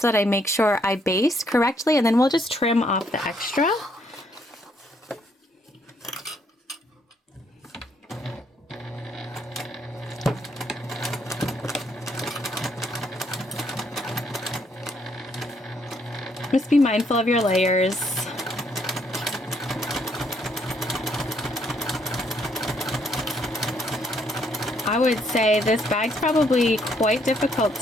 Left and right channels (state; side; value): normal; both; correlation 0.71